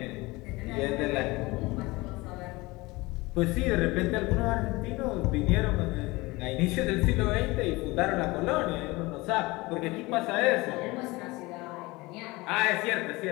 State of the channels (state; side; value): quieter; right; 22.3 dB